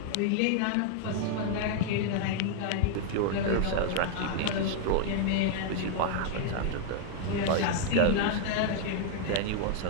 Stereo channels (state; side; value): different; both; correlation 0.00